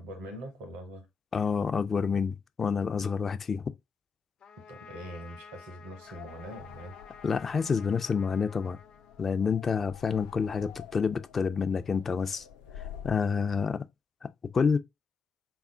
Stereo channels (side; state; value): right; quieter; 5.4 dB